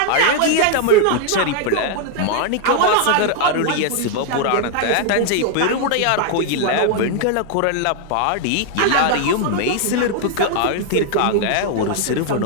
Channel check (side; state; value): both; different; correlation 0.00